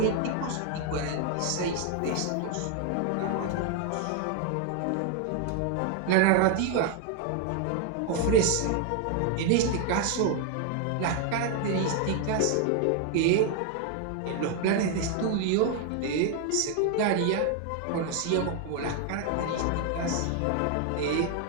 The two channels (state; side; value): different; both; correlation 0.01